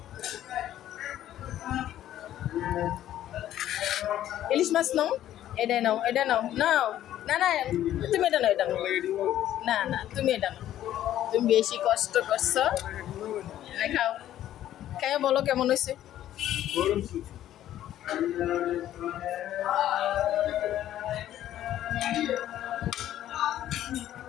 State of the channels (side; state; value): right; quieter; 12.3 dB